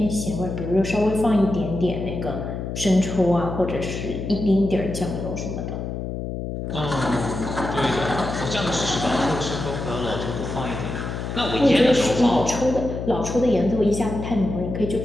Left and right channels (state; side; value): noise; left; hum, 5 dB below the sound